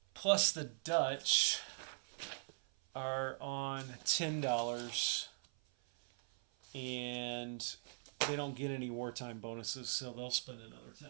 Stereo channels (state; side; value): silent; left; 51 dB below the other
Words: Plus the Dutch are on $10, and they don't get any wartime bonuses, so they'll spend another